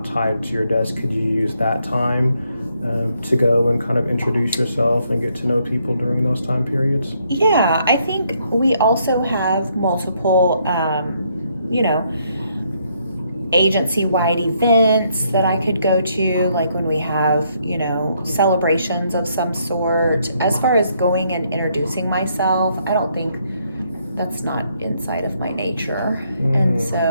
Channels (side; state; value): both; inverted; correlation -0.72